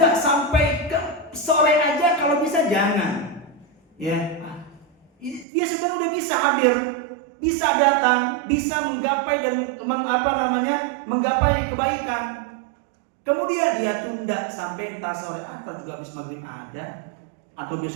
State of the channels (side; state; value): left; drops out; at 5.5 s